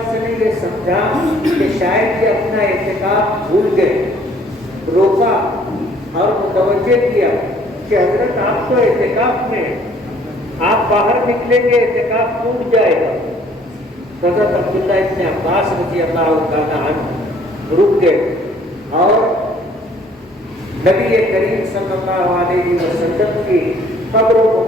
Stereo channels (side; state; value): both; normal; correlation 0.58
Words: نے یہ سمجھا کہ شاید یہ اپنا اعتکاف بھول گئے، روکا اور متوجہ کیا کہ حضرت آپ تو اعتکاف میں، آپ باہر نکلیں گے اعتکاف ٹوٹ جائے گا۔ حضرت عبداللہ ابن عباس رضی اللہ تعالیٰ عنہ رک گئے اور نبی کریم صلی اللہ علیہ وسلم کی قبر